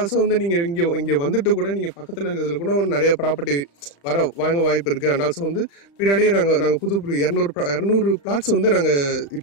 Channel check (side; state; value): right; late; 35 ms